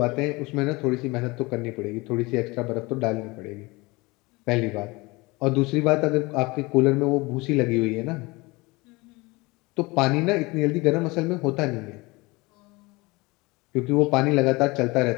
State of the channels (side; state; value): right; quieter; 23.8 dB